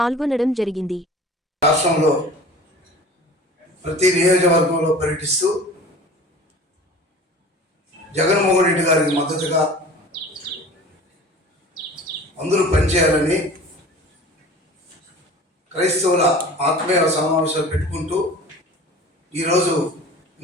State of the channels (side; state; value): both; normal; correlation 0.41